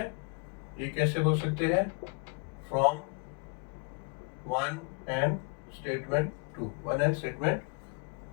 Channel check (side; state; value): right; quieter; 35.0 dB